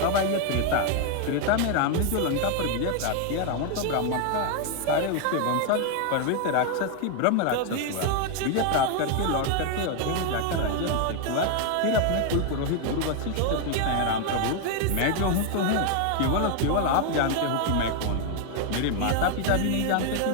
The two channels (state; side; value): different; both; correlation 0.01